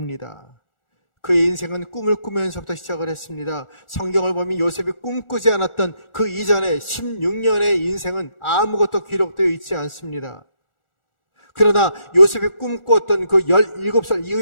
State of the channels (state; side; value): late; right; 1.4 ms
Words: 그의 인생은 꿈을 꾸면서부터 시작을 했습니다. 성경을 보면 요셉이 꿈꾸지 않았던 그 이전에 16년의 인생은 아무것도 기록되어 있지 않습니다. 그러나 요셉이 꿈꾸었던 그 17살